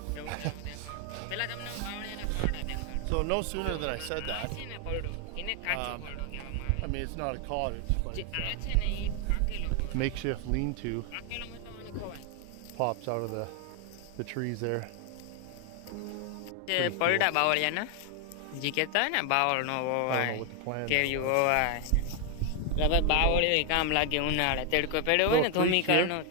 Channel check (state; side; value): different; both; correlation 0.00